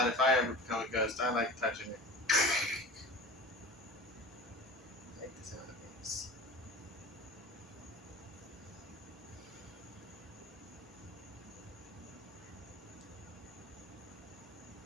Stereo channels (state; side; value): normal; both; correlation 0.37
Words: if I ever become a ghost. I like touching it. I like the sound of things.